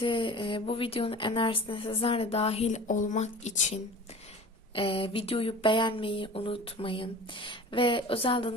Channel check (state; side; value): normal; both; correlation 0.39